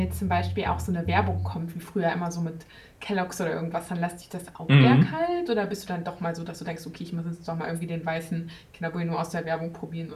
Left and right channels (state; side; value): identical; both; correlation 1.00